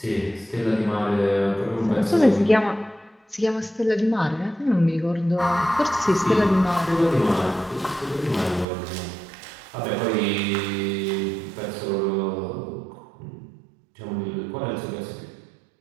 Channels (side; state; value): left; drops out; at 8.7 s